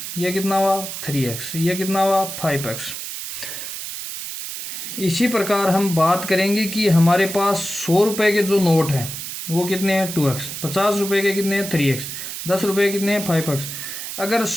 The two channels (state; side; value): noise; right; hiss, 7 dB below the sound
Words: ये कितना हुआ 3x, ये कितना हुआ 5x। इसी प्रकार हम बात करेंगे कि हमारे पास 100 रुपये के जो नोट हैं वो कितने हैं 2x, 50 रुपये के कितने हैं 3x, 10 रुपये के कितने हैं 5x। अगर